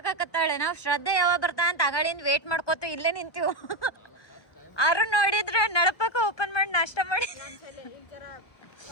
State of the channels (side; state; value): right; late; 1.3 ms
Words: ನಾವು ಶ್ರದ್ಧೆ ಯಾವಾಗ ಬರ್ತಾ ಅಂತ ಅಗಳಿಂದ ವೇಟ್ ಮಾಡ್ಕೋತ ಇಲ್ಲೇ ನಿಂತೀವಿ. ಅರು ನೋಡಿದ್ರೆ ನಳಪಕ್ಕ ಓಪನ್ ಮಾಡಿ ನಾಷ್ಟ ಮಾಡಿ